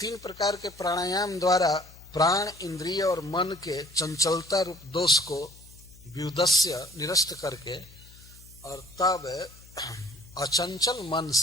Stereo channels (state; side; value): noise; left; hum, 22 dB below the sound